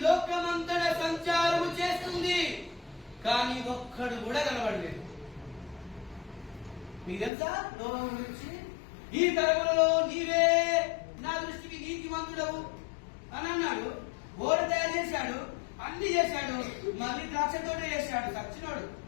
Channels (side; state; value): right; drops out; at 7.3 s